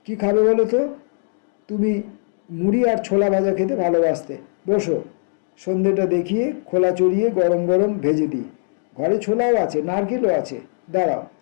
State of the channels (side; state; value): right; silent; digital silence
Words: কি খাবে বলো তো? তুমি মুড়ি আর ছোলা ভাজা খেতে ভালোবাসতে। বসো, সন্ধেটা দেখিয়ে খোলা চড়িয়ে গরম গরম ভেজে দিই। ঘরে ছোলাও আছে, নারকেলও আছে। দাঁড়াও,